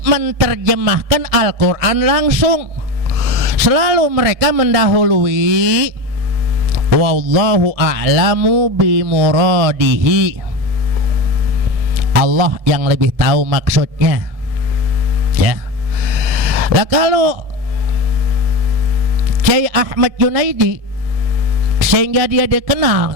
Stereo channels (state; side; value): late; left; 1.7 ms